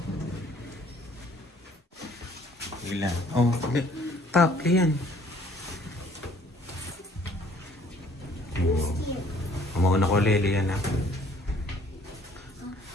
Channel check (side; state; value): both; normal; correlation 0.58